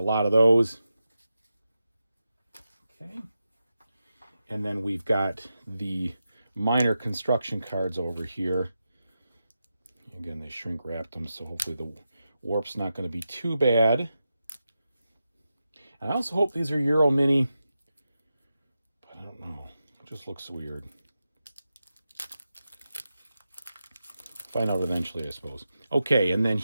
lot of those. Okay. And then we've got the minor construction cards over here. Again, they shrink wrapped them, so hopefully the warp's not going to be too bad. And I also hope these are Euro Mini, but I don't know. It just looks weird. Find out eventually, I suppose. Okay, and then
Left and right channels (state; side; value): inverted; both; correlation -0.89